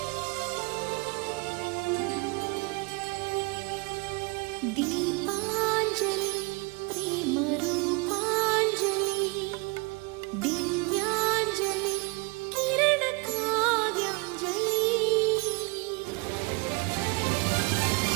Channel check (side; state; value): left; quieter; 28.9 dB